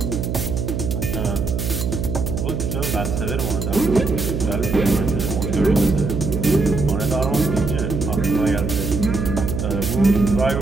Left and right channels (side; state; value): right; noise; hum, 2 dB below the sound